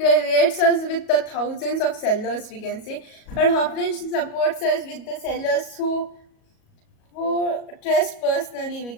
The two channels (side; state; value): right; late; 37 ms